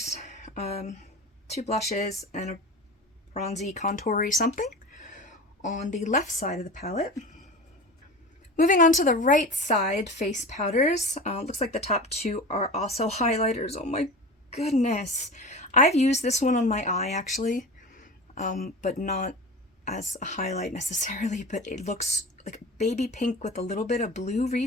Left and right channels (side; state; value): both; normal; correlation 0.32